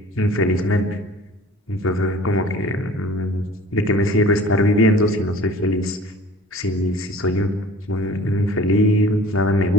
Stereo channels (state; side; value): normal; both; correlation 0.46